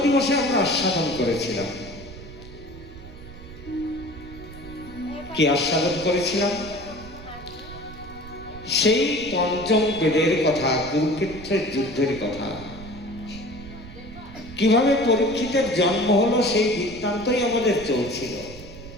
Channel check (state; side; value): noise; right; rumble, 15 dB below the sound